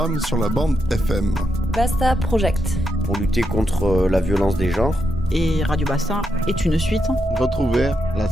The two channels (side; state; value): both; normal; correlation 0.83